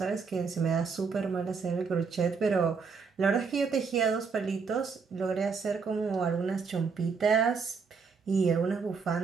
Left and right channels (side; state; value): left; quieter; 5.3 dB